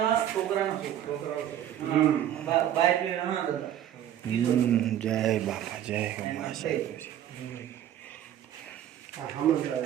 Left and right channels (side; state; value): left; quieter; 11.1 dB